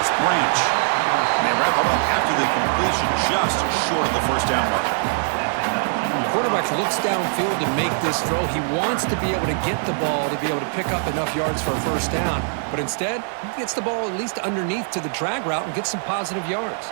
Branch. And they wrap it up after the completion, just short of the first down marker. The quarterback looks downfield to make this throw. He wants to be able to get the ball to be able to pick up enough yards for a first down. But instead, he gets the ball at least underneath to the drag route and gets some positive yards.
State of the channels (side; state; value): left; silent; digital silence